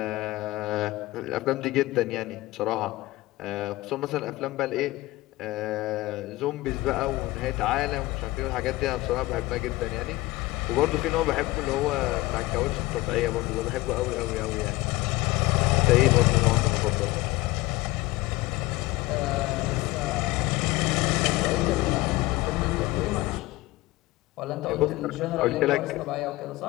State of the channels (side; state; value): right; quieter; 19.2 dB